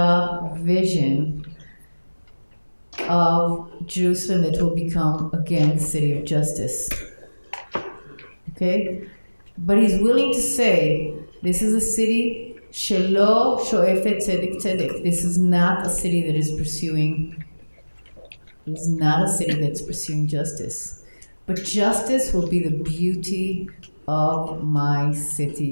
vision of Jerusalem that will become again the city of justice, okay? But he's willing to say, this is a city shelo shoefet tzedek tzedek. This is not a city that is pursuing. It's not a city that's pursuing justice. But justice will be the beauty of my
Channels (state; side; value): inverted; both; correlation -1.00